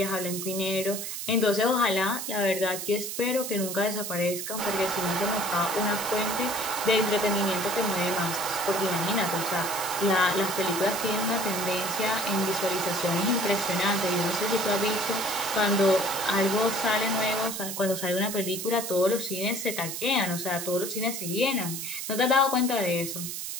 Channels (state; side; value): noise; right; hiss, 5 dB below the sound